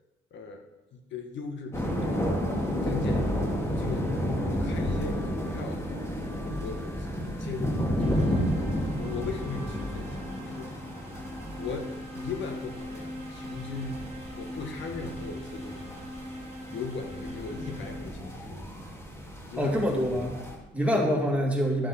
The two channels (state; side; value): normal; both; correlation 0.71